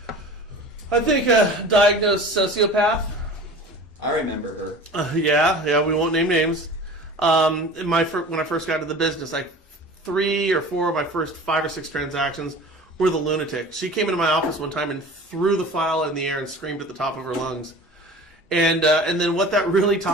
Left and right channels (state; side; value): normal; both; correlation 0.39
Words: I think a diagnosed sociopath. I remember her. Yeah, we won't name names. When I first got into the business, like 3 or 4 of my first 5 or 6 transactions were the lunatic. She came into my office one time and threw the file in the air and screamed at the top of her lungs. And then what that really